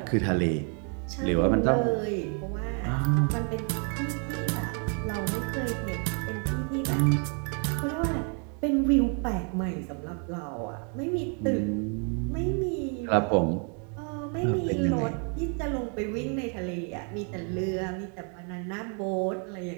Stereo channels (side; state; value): left; quieter; 39.5 dB